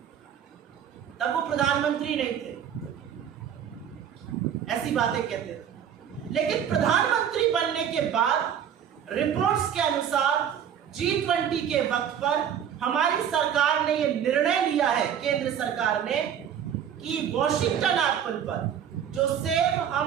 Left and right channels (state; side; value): quieter; left; 8.9 dB